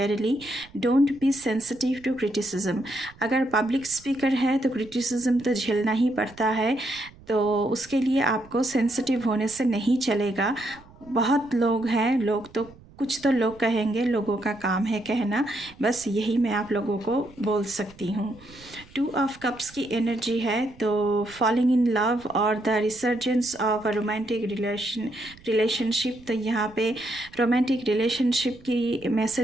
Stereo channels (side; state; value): right; noise; rumble, 24 dB below the sound